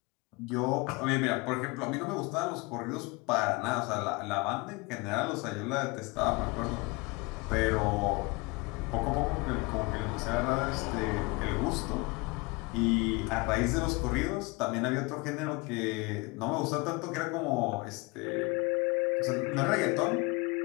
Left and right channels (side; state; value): right; quieter; 26.1 dB